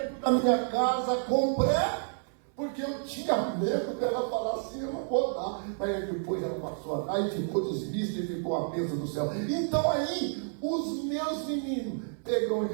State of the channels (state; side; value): silent; left; 58 dB below the other